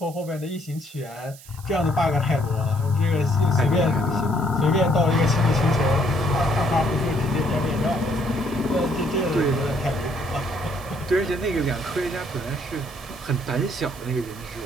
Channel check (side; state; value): right; noise; hiss, 20 dB below the sound